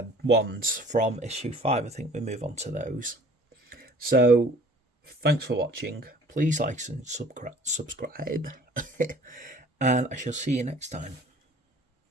ones from issue 5. I think we move on to those. So, thanks for watching. Please like and subscribe. And I shall see you next time.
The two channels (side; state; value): both; normal; correlation 0.52